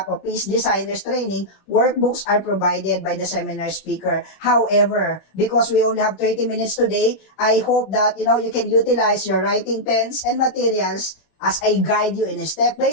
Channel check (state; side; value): late; right; 21 ms